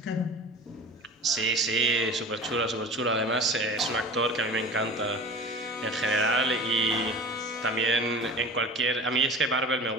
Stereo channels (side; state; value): both; normal; correlation 0.37